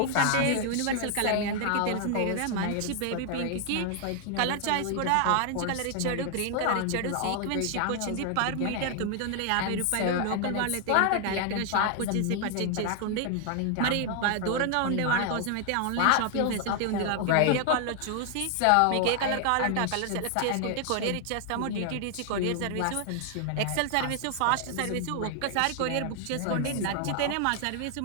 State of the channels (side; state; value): both; different; correlation 0.00